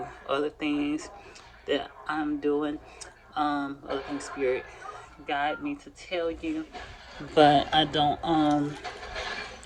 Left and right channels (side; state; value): both; identical; correlation 1.00